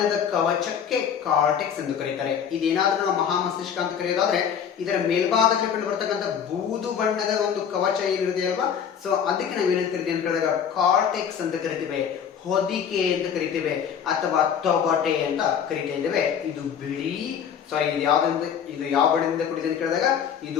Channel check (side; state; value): right; quieter; 7.9 dB